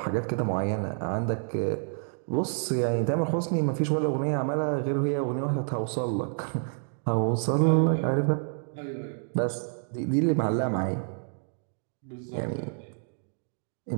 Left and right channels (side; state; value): left; silent; 59 dB below the other